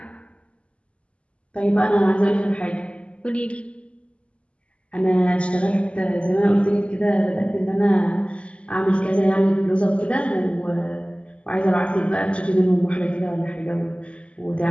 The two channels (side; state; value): right; late; 0.058 ms